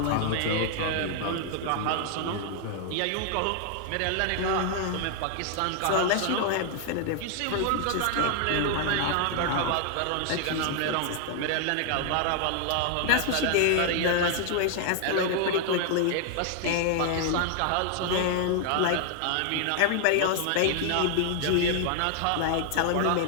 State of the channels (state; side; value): different; both; correlation 0.00